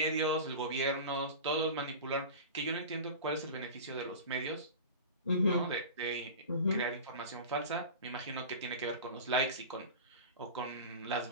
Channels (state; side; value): inverted; both; correlation -0.31